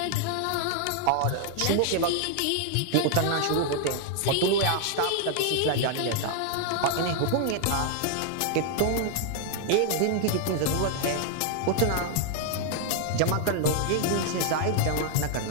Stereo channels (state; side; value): different; both; correlation 0.00